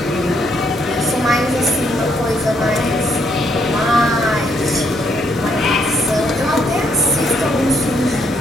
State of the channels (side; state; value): both; normal; correlation 0.72